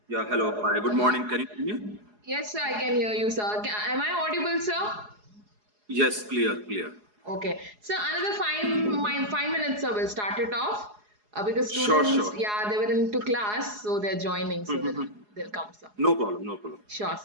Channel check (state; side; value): late; left; 4.8 ms